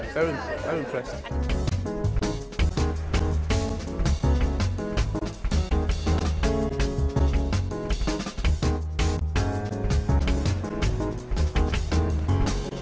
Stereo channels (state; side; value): identical; both; correlation 1.00